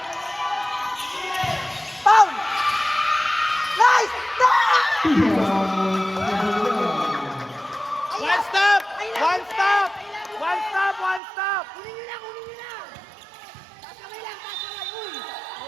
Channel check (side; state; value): left; drops out; at 11.2 s